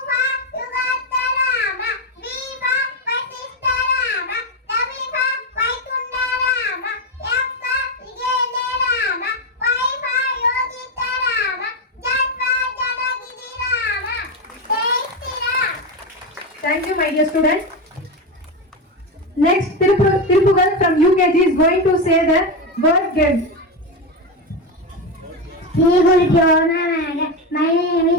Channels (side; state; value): both; normal; correlation 0.12